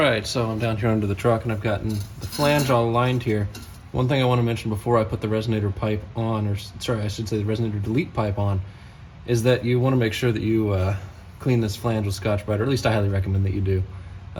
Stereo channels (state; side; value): identical; both; correlation 1.00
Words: so I'm down here under the truck and I've gotten the flange all aligned here. One thing I want to mention before I put the resonator pipe on, or sorry, I should say the resonator delete pipe on, is that you want to make sure that you clean this flange with Scotch-Brite, or at least I highly recommend that you do,